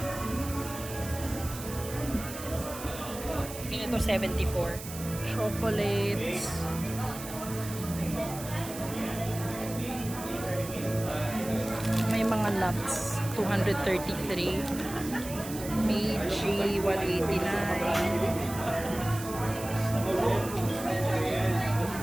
Ito 74. Chocolates. May mga nuts 233. Meiji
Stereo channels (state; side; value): noise; right; hiss, 11 dB below the sound